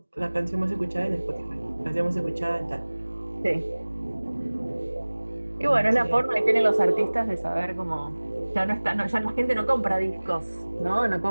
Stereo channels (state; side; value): inverted; both; correlation -1.00